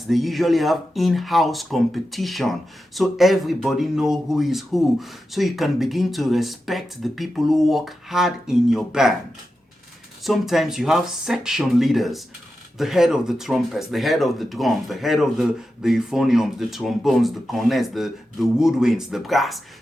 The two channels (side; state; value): both; normal; correlation 0.90